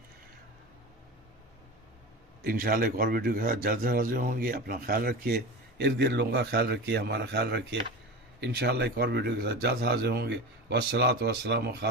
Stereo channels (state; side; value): normal; both; correlation 0.29